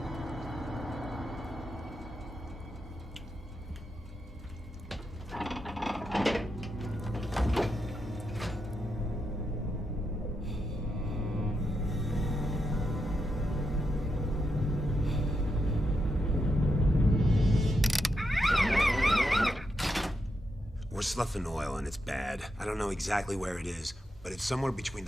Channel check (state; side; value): normal; both; correlation 0.84